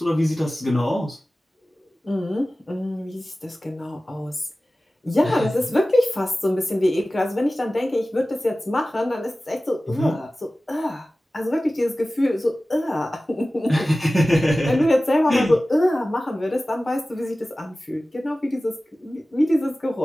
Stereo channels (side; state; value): both; normal; correlation 0.97